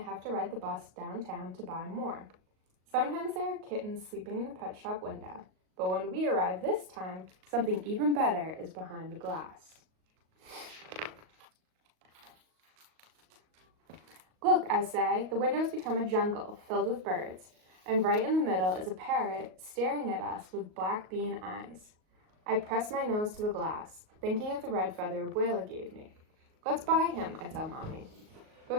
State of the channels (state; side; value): late; left; 38 ms